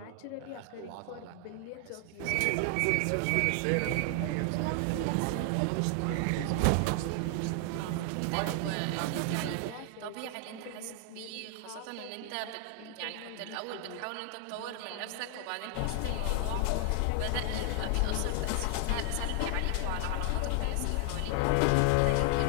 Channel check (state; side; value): different; both; correlation 0.00